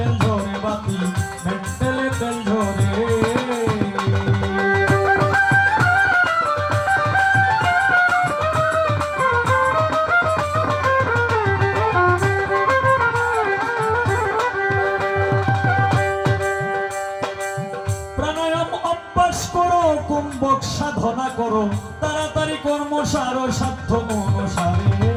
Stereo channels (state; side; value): identical; both; correlation 1.00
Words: ঝরে বাতি, মেন্টেলে তেল ঝরে। প্রাণায়াম অভ্যাস করো, কুম্ভক সাধনা করো, তাড়াতাড়ি কর্ম সারো, সাধ্য মনসারে।